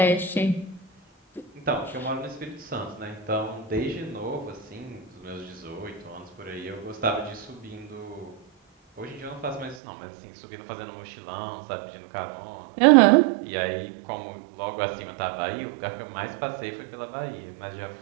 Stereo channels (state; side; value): drops out; left; at 9.8 s